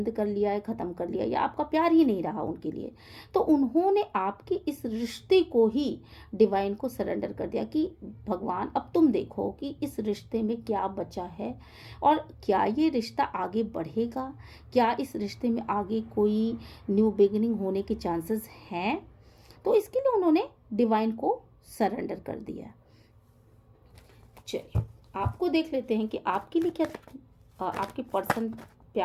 कर लिया है, ख़त्म कर लिया, या आपका प्यार ही नहीं रहा उनके लिए। तो उन्होंने आपके इस रिश्ते को ही डिवाइन को सरेंडर कर दिया कि भगवान अब तुम देखो कि इस रिश्ते में क्या बचा है और क्या ये रिश्ता आगे बढ़ेगा, क्या इस रिश्ते में आगे कोई न्यू बिगिनिंग होने के चांसेस हैं। तो इसके लिए उन्होंने डिवाइन को सरेंडर कर दिया। चलिए आपको देख लेते हैं कि आपके लिए क्या आपके पर्सन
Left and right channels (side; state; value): both; identical; correlation 1.00